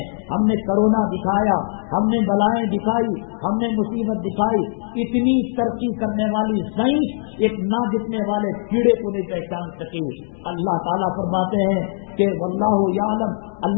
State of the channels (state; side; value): silent; right; 65 dB below the other